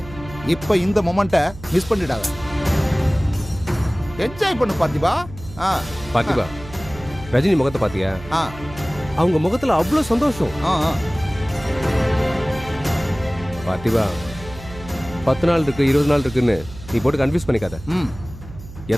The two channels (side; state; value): right; noise; hum, 15 dB below the sound